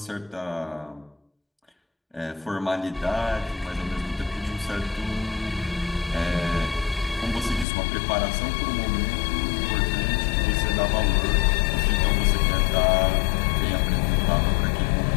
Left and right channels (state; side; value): drops out; right; at 7.7 s